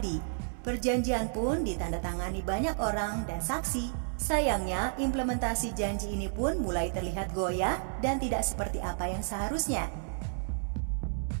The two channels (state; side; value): silent; left; 56 dB below the other